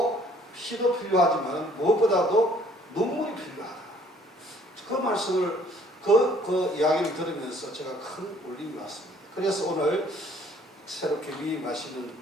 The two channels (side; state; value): both; normal; correlation 0.59